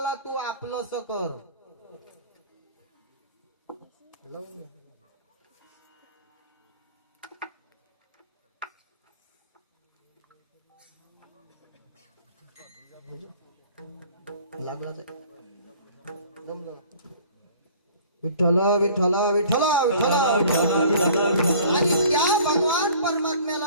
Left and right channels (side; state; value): both; inverted; correlation -0.50